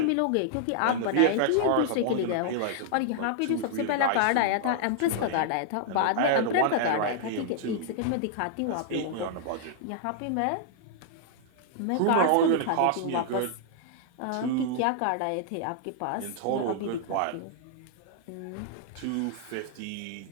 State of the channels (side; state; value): both; different; correlation -0.01